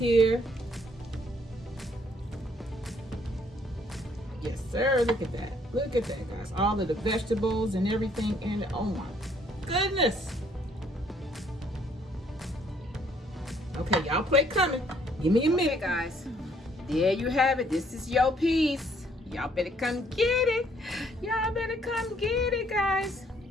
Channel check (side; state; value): both; normal; correlation 0.65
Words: Yes, sir. Look at that. Look at that, guys. All of the vegetables and everything in it. Oh my goodness. Okay, y'all plate coming. Give me a minute, guys. There you have it. This is your piece. Y'all better come get it. Y'all better come get it, guys.